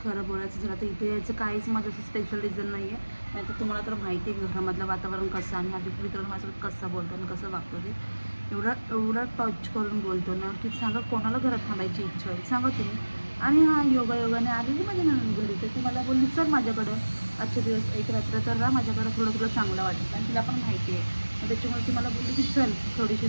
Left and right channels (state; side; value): inverted; both; correlation -1.00